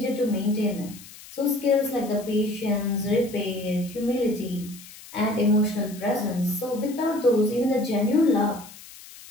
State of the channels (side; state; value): left; noise; hiss, 18 dB below the sound